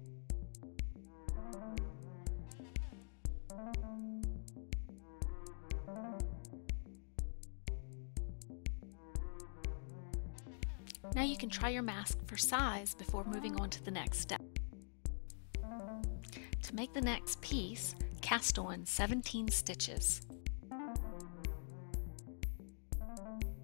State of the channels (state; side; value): silent; right; digital silence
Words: Now you can try your mask for size before moving on to the next step. To make the next piece, cast on 17 stitches.